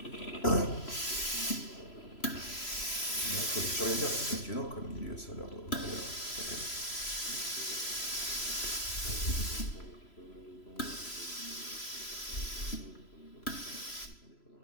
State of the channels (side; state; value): right; late; 3.0 ms